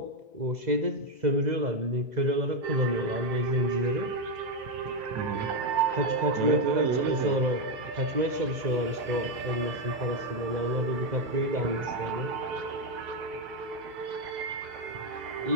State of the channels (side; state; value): left; late; 2.0 ms